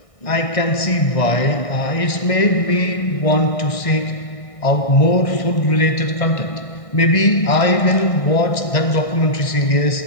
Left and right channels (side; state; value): right; late; 1.6 ms